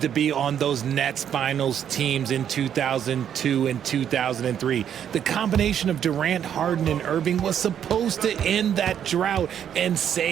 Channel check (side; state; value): left; quieter; 9.2 dB